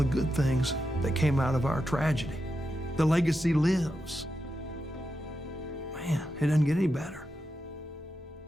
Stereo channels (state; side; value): normal; both; correlation 0.88